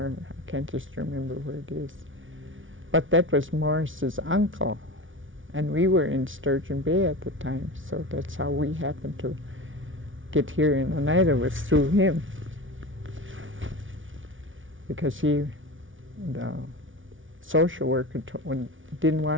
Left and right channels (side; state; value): left; late; 0.57 ms